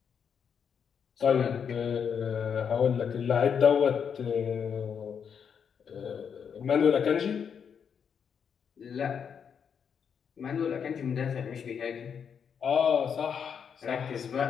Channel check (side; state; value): right; quieter; 7.2 dB